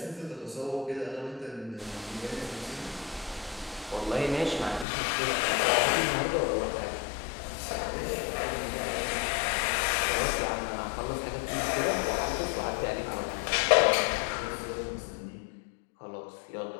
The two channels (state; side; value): drops out; right; at 4.9 s